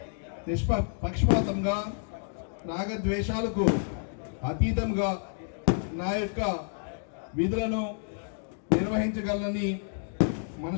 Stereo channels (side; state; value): right; silent; digital silence